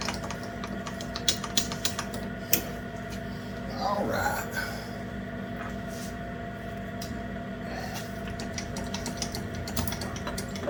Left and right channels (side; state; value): both; identical; correlation 1.00